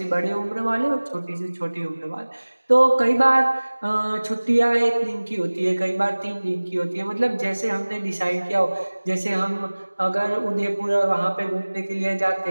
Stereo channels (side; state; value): both; inverted; correlation -1.00